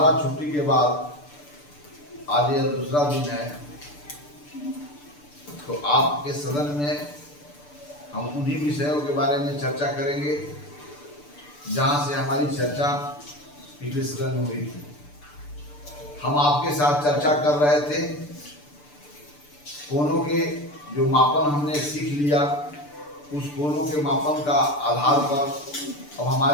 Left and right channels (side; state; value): right; late; 6.8 ms